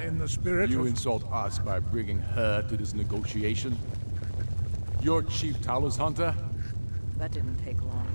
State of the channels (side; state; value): both; inverted; correlation -1.00